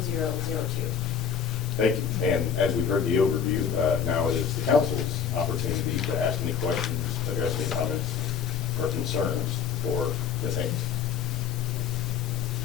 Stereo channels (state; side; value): quieter; right; 7.4 dB